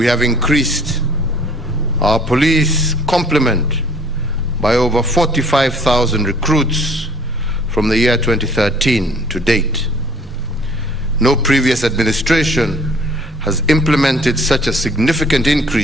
have increased our police complement by over 45,000 recruits from the year 2013 to date. No previous administration has implemented such a significant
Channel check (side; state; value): both; normal; correlation 0.55